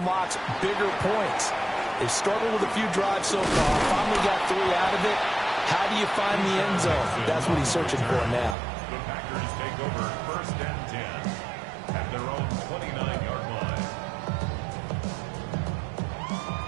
bigger points. They've struggled with a few drives so far, finally got 3 out of it. How do you find the end zone? That's what he's searching for now. The Packers take over 1st and 10 at their own 29-yard line.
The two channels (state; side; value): drops out; left; at 8.6 s